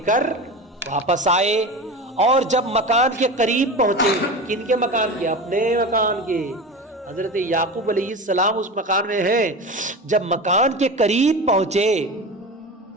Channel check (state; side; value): normal; both; correlation 0.28